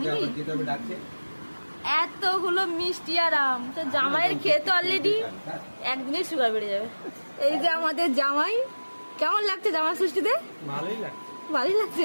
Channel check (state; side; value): inverted; both; correlation -1.00